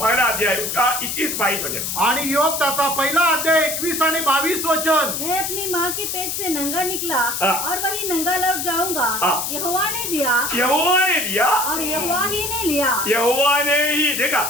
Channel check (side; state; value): left; noise; hiss, 2 dB below the sound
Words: पहला अध्याय उसका 21-22 वचन. आणि योग त्याचा पहिला अध्याय 21 आणि 22 वचन. मैं अपनी माँ के पेट से नंगा निकला और वही नंगा लौट जाऊंगा. यहोवा ने दिया, यहोवा ने दिया और यहोवा ही ने लिया. यहोवा ने ही. देखा